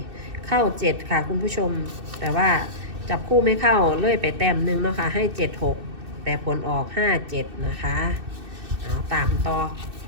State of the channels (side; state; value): left; late; 2.6 ms